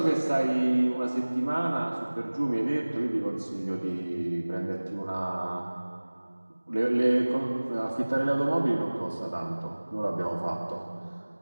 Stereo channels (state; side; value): inverted; both; correlation -1.00